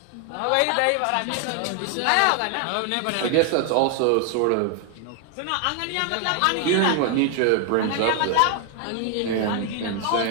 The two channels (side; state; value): both; different; correlation 0.00